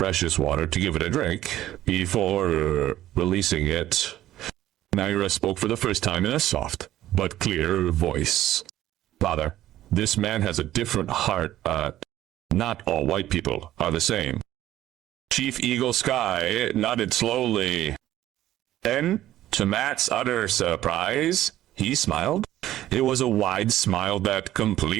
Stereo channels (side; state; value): left; quieter; 13.6 dB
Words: water to give it a drink before releasing it. Naira spoke for the first time in a soft but clear voice. Father, this man has a different heart. Not all white people are the same. Chief Eagle Sky nodded slowly. Then, to Matt's utter surprise, he smiled. It was a wide smile that